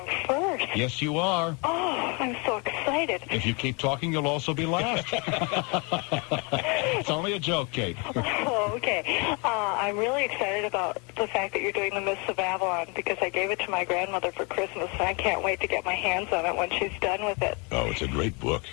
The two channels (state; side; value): quieter; right; 31.7 dB